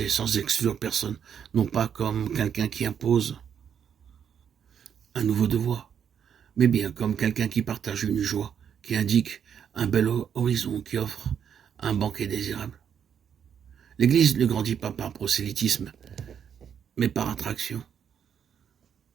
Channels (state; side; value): quieter; left; 8.1 dB